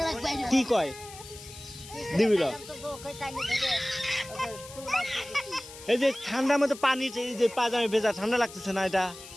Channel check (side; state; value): left; noise; hiss, 16 dB below the sound